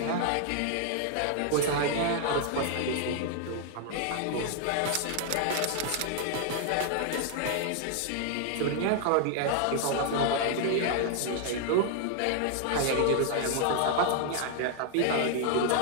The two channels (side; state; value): both; different; correlation 0.00